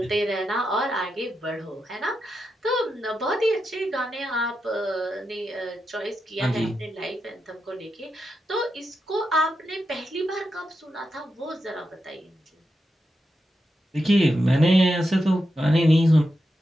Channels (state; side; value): normal; both; correlation 0.87